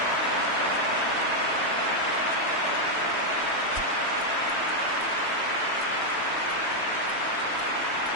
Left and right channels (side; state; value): right; late; 3.1 ms